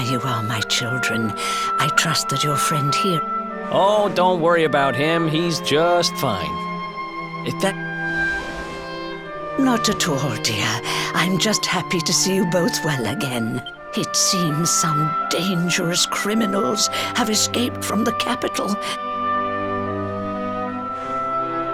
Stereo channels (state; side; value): identical; both; correlation 1.00